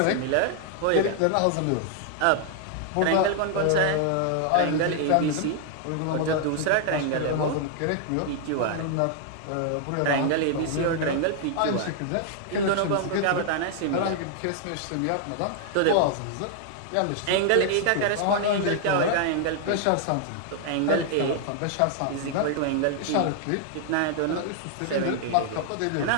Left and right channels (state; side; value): different; both; correlation 0.00